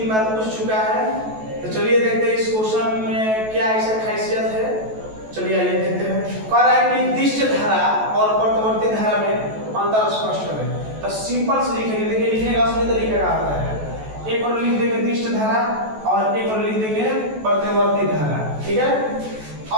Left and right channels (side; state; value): left; late; 14 ms